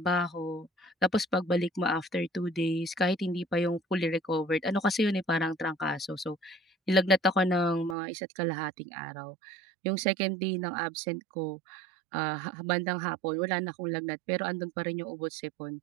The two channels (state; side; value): drops out; left; at 8.0 s